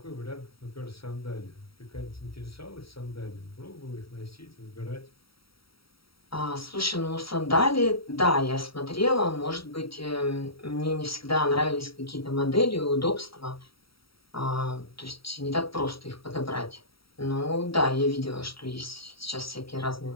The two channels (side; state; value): right; late; 0.75 ms